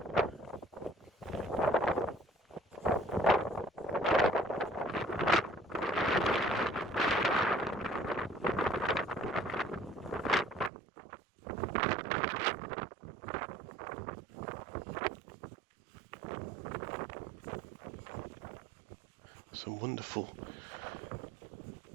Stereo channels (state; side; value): drops out; left; at 10.7 s